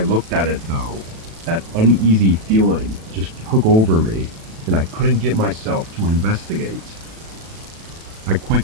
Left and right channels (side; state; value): left; late; 37 ms